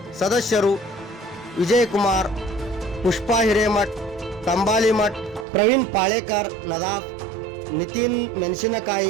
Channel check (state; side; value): drops out; left; at 5.5 s